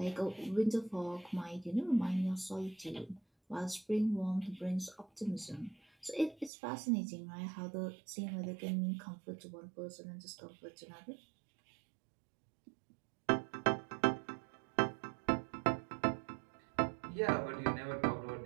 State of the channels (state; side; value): drops out; left; at 6.5 s